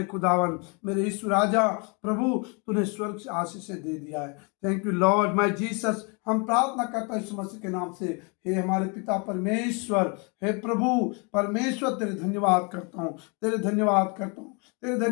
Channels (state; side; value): quieter; right; 33.2 dB